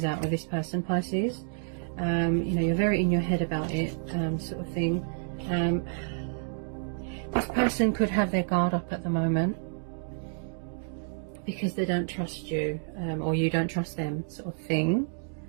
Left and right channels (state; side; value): silent; left; digital silence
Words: out with this person, Pisces. You know, you're very in your head about it, sort of thing. This person could have their guard up at the moment because they don't trust you, or you don't trust them, sort of thing.